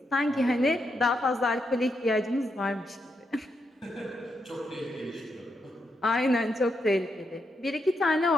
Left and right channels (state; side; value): normal; both; correlation 0.82